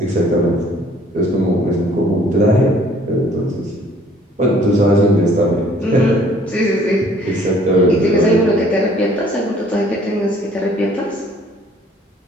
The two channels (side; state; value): both; normal; correlation 0.57